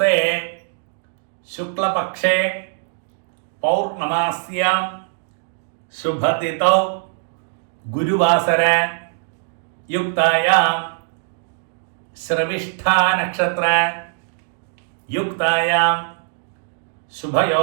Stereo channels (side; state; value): left; silent; digital silence